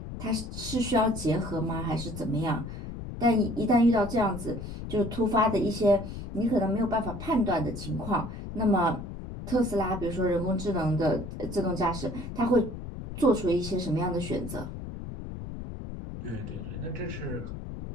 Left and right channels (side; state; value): left; noise; rumble, 9 dB below the sound